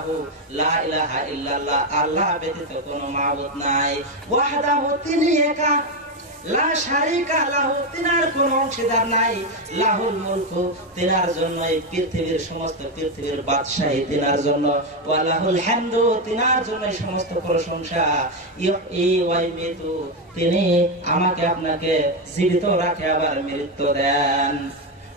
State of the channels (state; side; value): normal; both; correlation 0.08